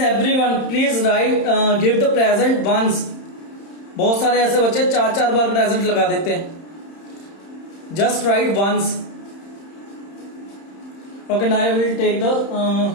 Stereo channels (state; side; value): late; right; 31 ms